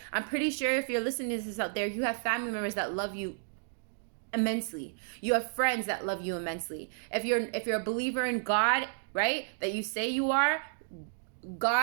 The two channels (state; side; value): silent; left; digital silence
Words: I'm pretty sure if you're listening to this out there, you have family members that love you immensely. You have friends that love you immensely. If you're a believer in God, right, that you say you are,